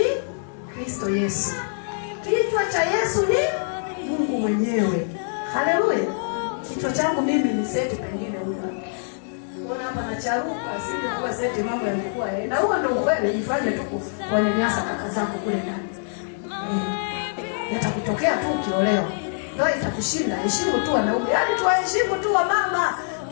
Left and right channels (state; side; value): silent; right; digital silence